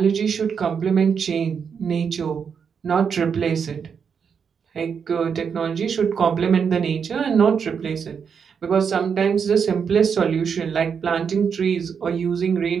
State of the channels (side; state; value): left; quieter; 6.6 dB